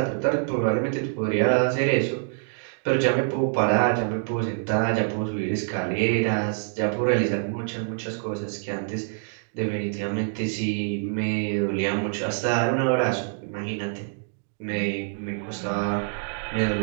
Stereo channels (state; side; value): silent; left; digital silence